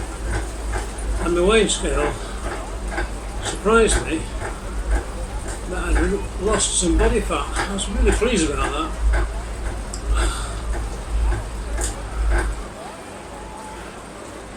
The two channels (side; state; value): both; identical; correlation 1.00